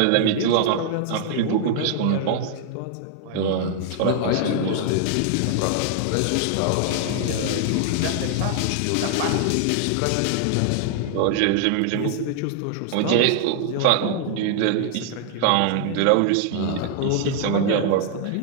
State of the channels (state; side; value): different; both; correlation 0.00